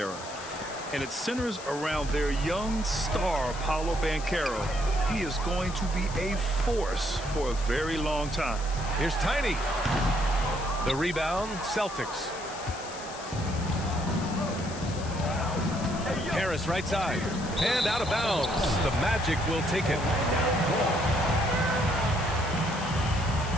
And it centers around their young star, Paolo Banchero. He is going to be a force for a very long time. Here's Tiny. The rebound, Celtics. Harris right side. And out of bounds. The Magic will take it.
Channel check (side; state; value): left; noise; hiss, 14 dB below the sound